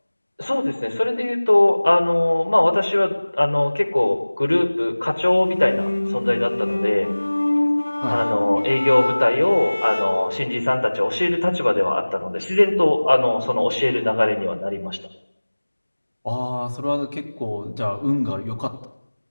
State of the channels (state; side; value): inverted; both; correlation -1.00